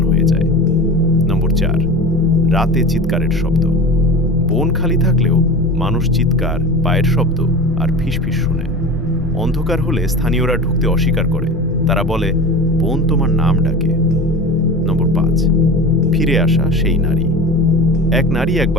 হয়ে যায়। নম্বর 4, রাতে চিৎকারের শব্দ। বন খালি থাকলেও মানুষ চিৎকার, পায়ের শব্দ আর ফিসফিস শুনে। অন্ধকার হলে স্থানীয়রা ঢুকতে অস্বীকার করে, তারা বলে বন তোমার নাম ডাকে। নম্বর 5, ফিরে আসা সেই নারী। এক নারী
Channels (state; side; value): normal; both; correlation 0.33